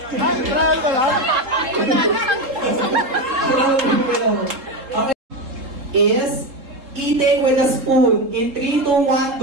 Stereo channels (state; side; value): late; left; 3.8 ms